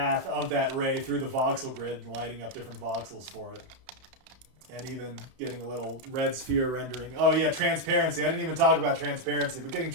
of that ray through the voxel grid and lighting up different voxels for it. And even getting a little red sphere rendering. Oh yeah, transparency. I didn't even talk about transparency, but getting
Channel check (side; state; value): left; late; 31 ms